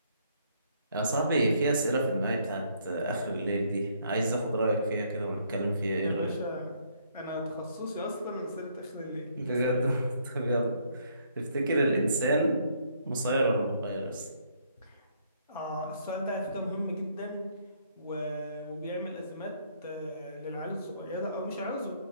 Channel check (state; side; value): inverted; both; correlation -0.68